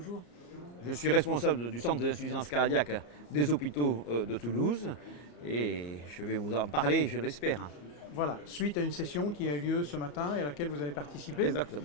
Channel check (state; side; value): late; right; 34 ms